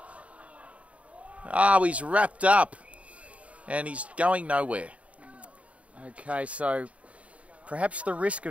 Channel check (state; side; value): late; left; 0.065 ms